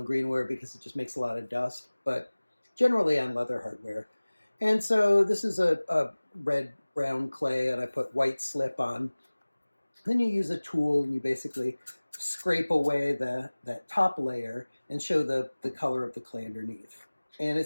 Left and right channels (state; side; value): inverted; both; correlation -1.00